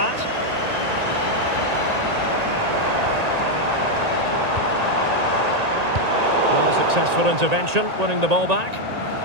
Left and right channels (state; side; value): late; left; 1.9 ms